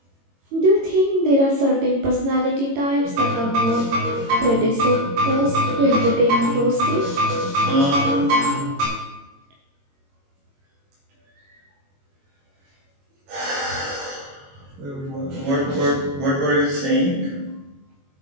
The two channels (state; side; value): late; left; 22 ms